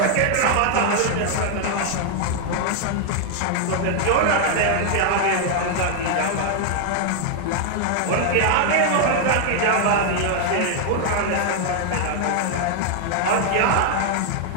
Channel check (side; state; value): both; different; correlation 0.00